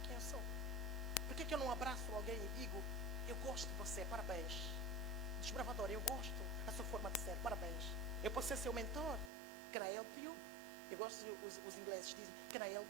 Quem eu sou? Por que eu não abraço alguém e digo, eu gosto de você, parabéns. Desbravador, eu gosto da sua forma de ser, parabéns. Eu posso ser seu mentor. Can I help you? Eu gosto, os ingleses dizem, can I help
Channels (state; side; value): drops out; left; at 9.3 s